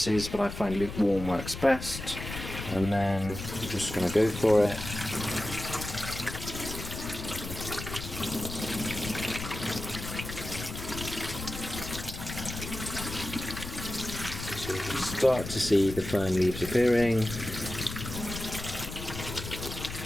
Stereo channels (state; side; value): noise; left; rumble, 8 dB below the sound